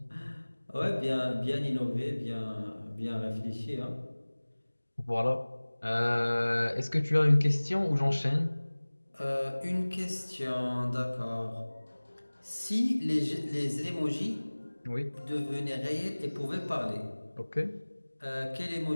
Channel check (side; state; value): both; inverted; correlation -1.00